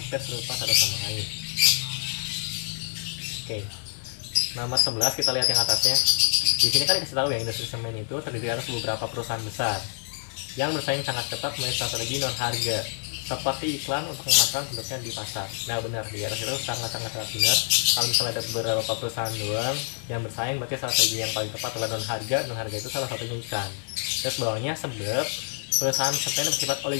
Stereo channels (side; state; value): right; silent; 58 dB below the other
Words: serupa satu sama lain. Oke. Nomor 11 kita lihat yang atasnya. Di sini kan dikasih tahu ya, industri semen itu terdiri atas beberapa perusahaan besar yang bersaing sangat ketat melalui strategi non harga, seperti iklan untuk memasarkan produknya di pasar. Nah benar, di atas itu sangat-sangat benar. Kalau misalnya ada beberapa perusahaan doang yang bersaing, berarti strategi yang paling tepat adalah non harga. Non harga itu salah satunya iklan. Terus bawahnya sebab perusahaan semen bersifat